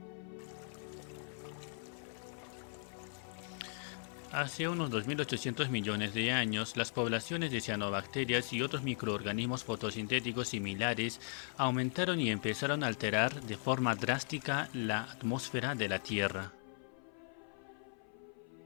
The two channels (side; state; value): right; silent; 52 dB below the other